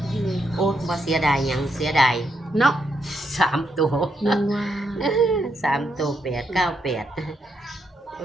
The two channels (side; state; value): both; normal; correlation 0.79